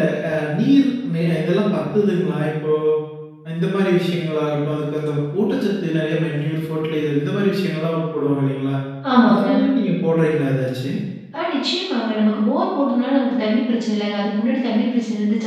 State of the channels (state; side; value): identical; both; correlation 1.00